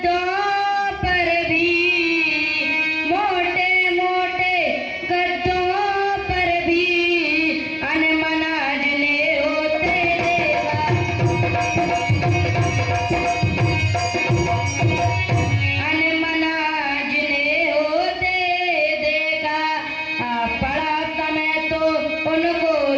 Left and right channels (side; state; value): both; identical; correlation 1.00